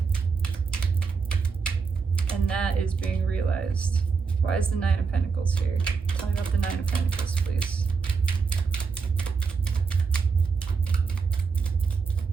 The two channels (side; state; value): left; quieter; 5.2 dB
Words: And that is being realized. Why is the 9 of Pentacles here? Tell me about the 9 of Pentacles, please.